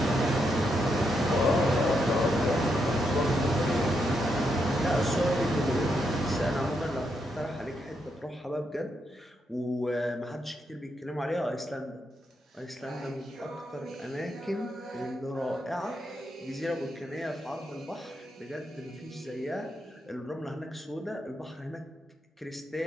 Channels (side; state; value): both; normal; correlation 0.80